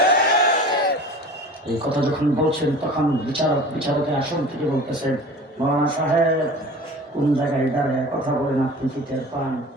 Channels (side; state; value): both; normal; correlation 0.39